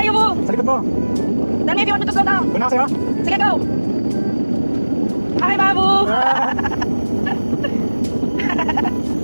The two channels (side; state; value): both; inverted; correlation -1.00